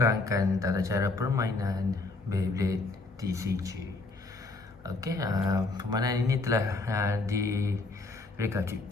tata cara permainan Beyblade TCG. Okey, permainan ini telah direka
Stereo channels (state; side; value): quieter; right; 3.5 dB